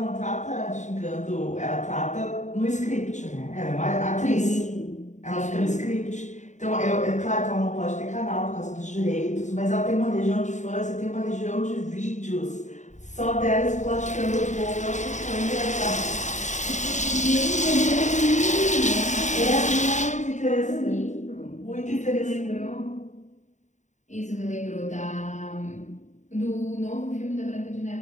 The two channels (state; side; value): late; right; 0.35 ms